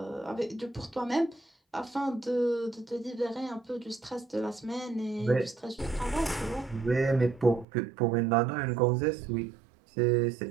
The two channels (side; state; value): left; drops out; at 7.7 s